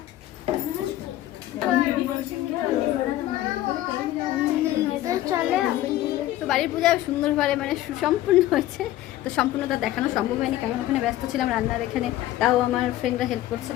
তো বাড়ির পূজা সুন্দরভাবে মানে সুসম্পূর্ণ হয়েছে। তো সম্পূর্ণতা দেখানো সম্ভব হয়নি, কারণ ওখানে ব্যস্ত ছিলাম রান্নার। এখানে তাও আমার ফ্রেন্ডরা হেল্প করছে,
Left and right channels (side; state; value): right; quieter; 14.5 dB